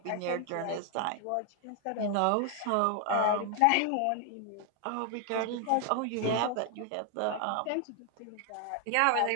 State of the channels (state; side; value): different; both; correlation 0.00